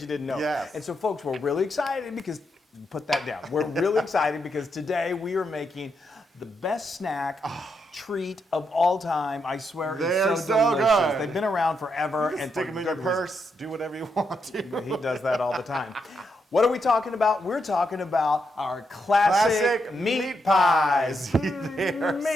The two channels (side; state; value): both; normal; correlation 0.81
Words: you didn't know. Yes. And so folks, we're really excited because, put that down. We're really excited because today we are making the best snack treat of all time. I swear They're it's so delicious. good. They've been around forever. You can stick them in your purse, do whatever you want to. He does that all the time. What are we talking about? We're talking about our classic meat pies. They're